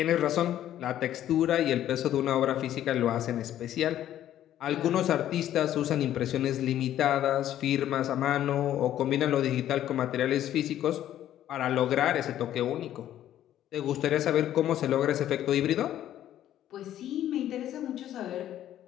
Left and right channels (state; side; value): quieter; right; 11.9 dB